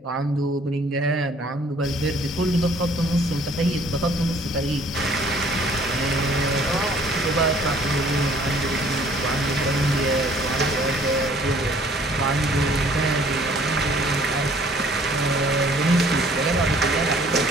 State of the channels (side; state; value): both; normal; correlation 0.57